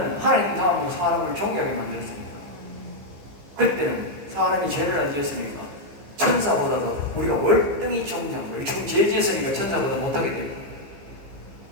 하나님 다음으로 사람을 존귀하게 만들었으니까. 그때는 사람이 죄를 안 지었으니까 천사보다도 우리가 월등히 존귀한 거예요. 지금 죄 지었으니까 천사보다 못하게 돼요.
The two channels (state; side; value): late; left; 14 ms